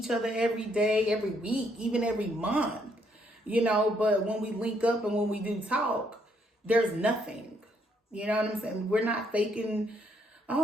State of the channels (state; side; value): normal; both; correlation 0.71